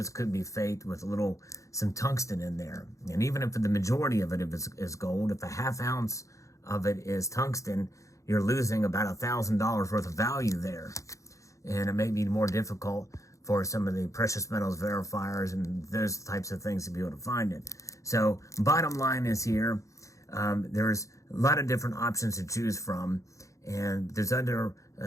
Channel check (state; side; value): late; right; 0.15 ms